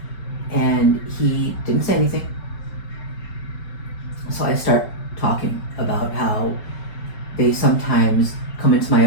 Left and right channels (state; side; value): late; right; 5.4 ms